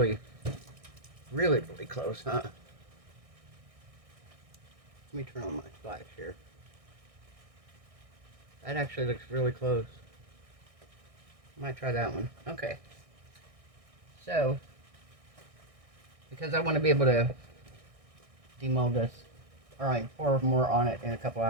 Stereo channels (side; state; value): left; late; 1.6 ms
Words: really, really close, huh? Let me turn on my flash here. That actually looks really close. Might try that one. Okay. So, because I want to be able to demold this, or I pour more on it in a couple